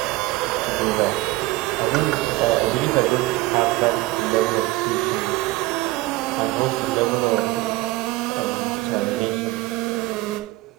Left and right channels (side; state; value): left; quieter; 19.4 dB